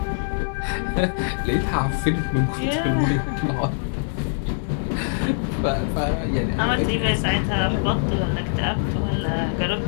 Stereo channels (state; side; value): silent; right; 60 dB below the other